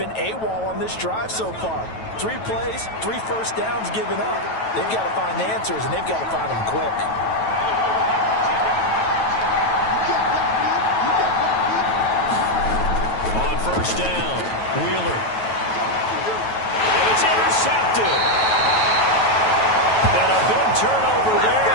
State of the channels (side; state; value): right; late; 9.2 ms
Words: AWOL on this drive so far. 3 plays, 3 first downs given up. They've got to find answers, and they've got to find them quick. On first down, Wheeler. And it's intercepted. And a big turnover there